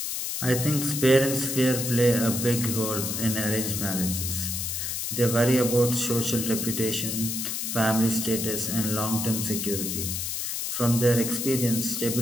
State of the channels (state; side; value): noise; left; hiss, 3 dB below the sound